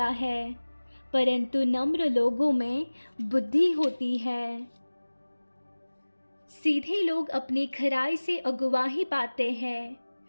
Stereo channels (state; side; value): inverted; both; correlation -1.00